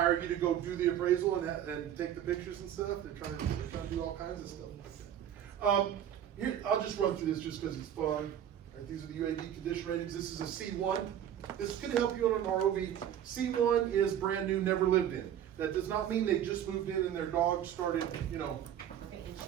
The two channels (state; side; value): quieter; left; 10.2 dB